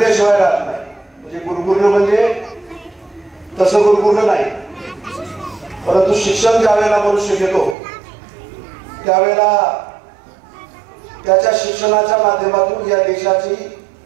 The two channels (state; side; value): drops out; left; at 7.8 s